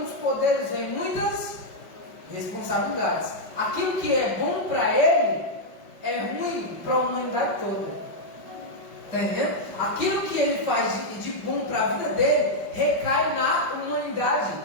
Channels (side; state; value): right; late; 5.3 ms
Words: poderes vem muitas responsabilidades. Aquilo que é bom para ele é ruim para a humanidade toda. Está entendendo? Aquilo que ele faz de bom para a vida dele recai na humanidade.